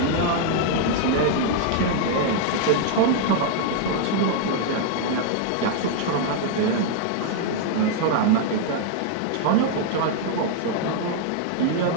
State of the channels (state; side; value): different; both; correlation 0.00